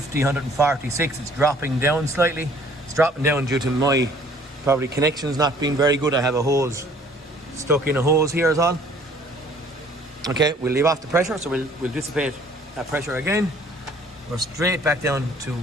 146. It's dropping down slightly. It's dropping down due to my probably connections not being very good. I have a hose stuck in a hose here is all. Okay, we'll leave off the pressure, so we'll dissipate that pressure again. We're straight back down to,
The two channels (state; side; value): normal; both; correlation 0.56